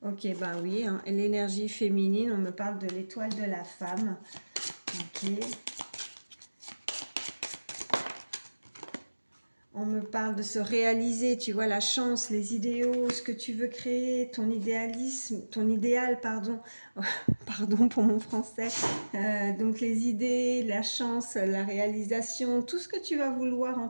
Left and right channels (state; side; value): inverted; both; correlation -1.00